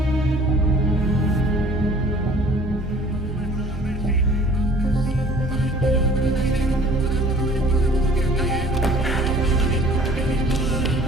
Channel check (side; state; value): both; normal; correlation 0.51